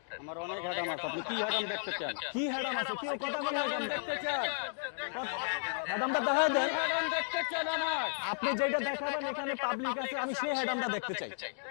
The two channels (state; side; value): silent; right; digital silence